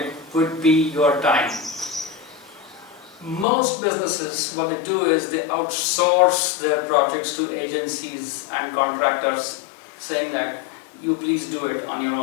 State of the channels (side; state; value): right; drops out; at 3.5 s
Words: would be your time. Most businesses, what they do is they outsource their projects to agencies and contractors, saying that you please do it on your